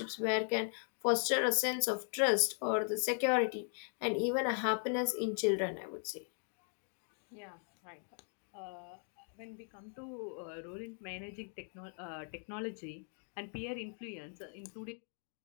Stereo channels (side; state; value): right; silent; 52 dB below the other